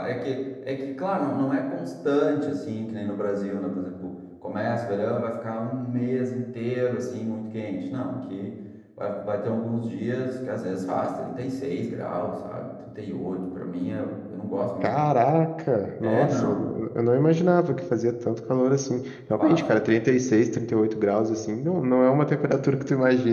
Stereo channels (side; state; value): both; identical; correlation 1.00